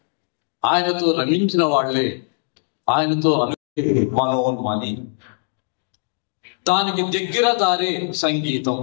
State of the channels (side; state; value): right; silent; digital silence